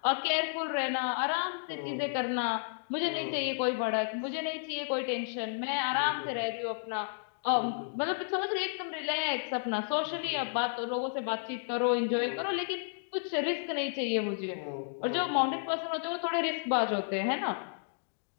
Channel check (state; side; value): silent; right; digital silence